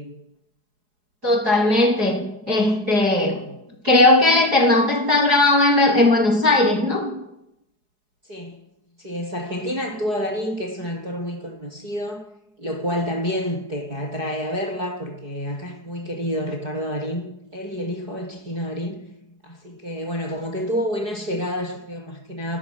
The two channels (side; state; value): left; late; 4.8 ms